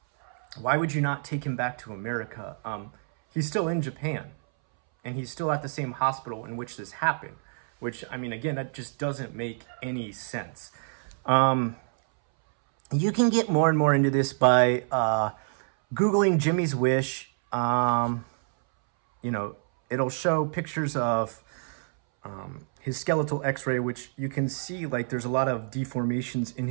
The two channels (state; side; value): silent; left; 60 dB below the other